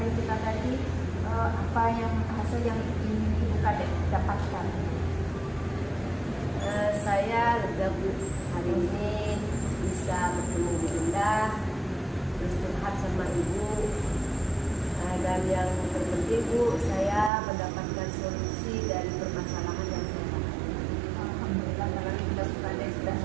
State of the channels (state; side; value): drops out; left; at 17.3 s